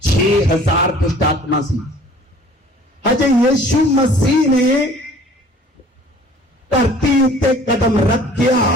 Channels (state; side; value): normal; both; correlation 0.51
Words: 6000 दुष्ट आत्मा सी। हजे यीशु मसीह ने धरती उत्ते कदम रखिया,